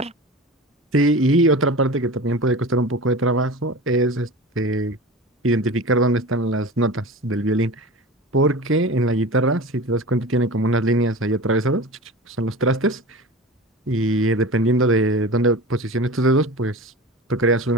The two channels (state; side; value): normal; both; correlation 0.33